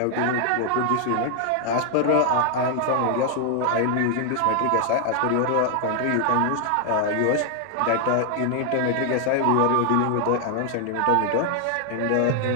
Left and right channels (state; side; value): different; both; correlation 0.00